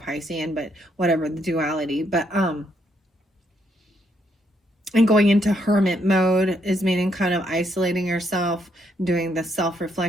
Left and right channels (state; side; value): normal; both; correlation 0.74